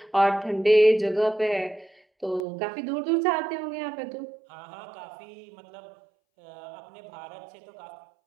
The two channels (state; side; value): drops out; left; at 2.5 s